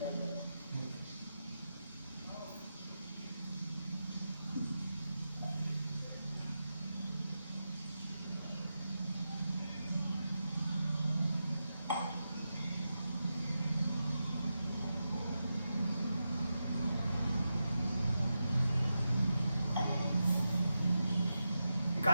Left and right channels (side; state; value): both; inverted; correlation -0.89